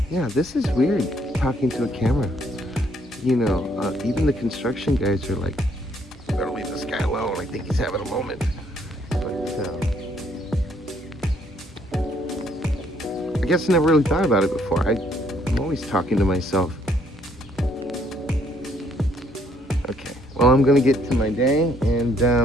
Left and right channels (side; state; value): both; normal; correlation 0.67